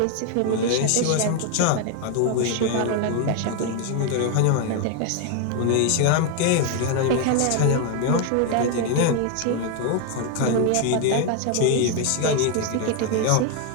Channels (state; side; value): different; both; correlation 0.01